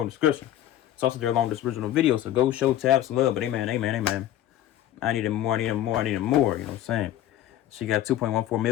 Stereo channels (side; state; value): right; quieter; 12.5 dB